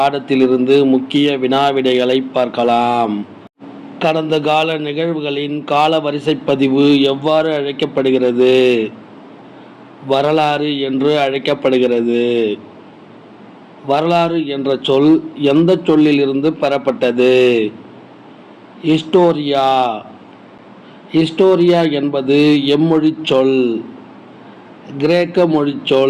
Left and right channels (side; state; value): both; identical; correlation 1.00